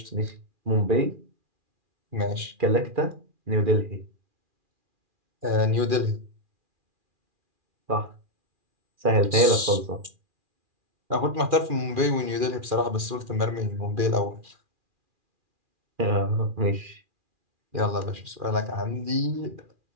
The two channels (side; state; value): left; late; 2.4 ms